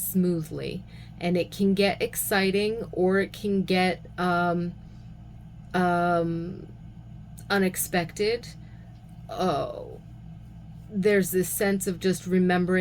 And it can get exciting, or it can get unexpected. There's this sense of just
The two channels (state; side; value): identical; both; correlation 1.00